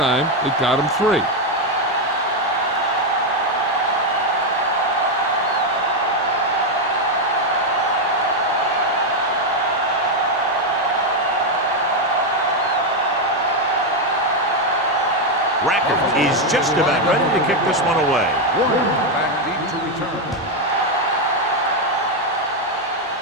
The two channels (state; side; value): normal; both; correlation 0.04